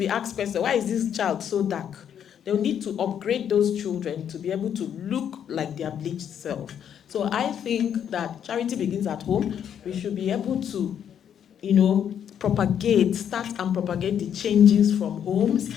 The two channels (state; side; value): quieter; right; 8.9 dB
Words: asked questions, why is this child so dark? They'll need to upgrade those children to be able to look like their bleached self. So I think that charity begins at home. We should be able to, start and propagate the changes from homes